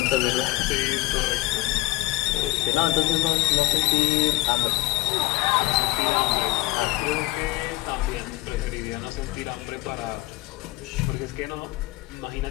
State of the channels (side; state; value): right; quieter; 18.8 dB